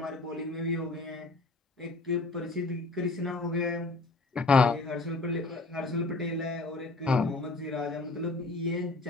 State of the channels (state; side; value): quieter; right; 3.2 dB